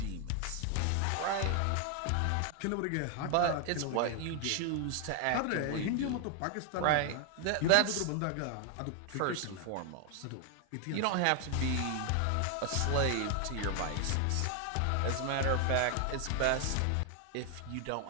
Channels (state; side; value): different; both; correlation 0.00